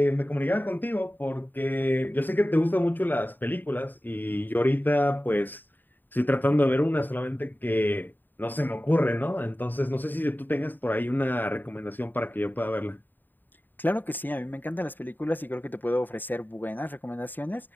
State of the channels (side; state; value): right; late; 0.090 ms